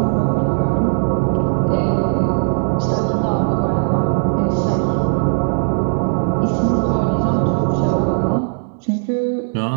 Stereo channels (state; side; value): silent; left; digital silence